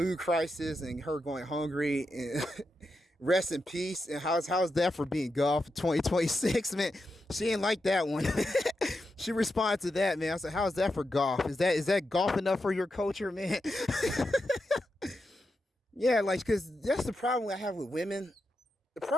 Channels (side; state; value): both; normal; correlation 0.87